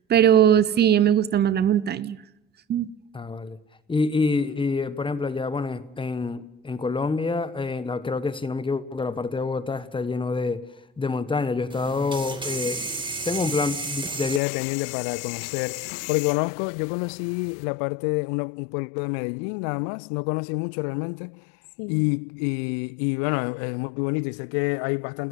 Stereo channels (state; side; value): drops out; right; at 14.4 s